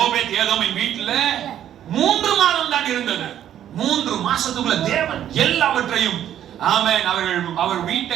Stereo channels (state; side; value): quieter; left; 10.8 dB